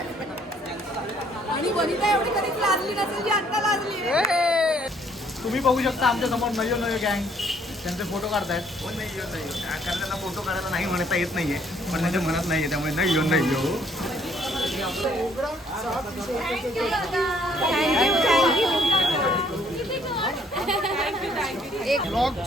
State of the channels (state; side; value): normal; both; correlation 0.64